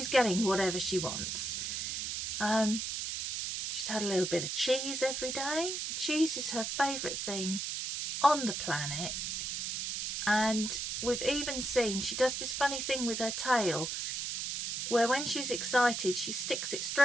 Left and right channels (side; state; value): right; noise; hiss, 3 dB below the sound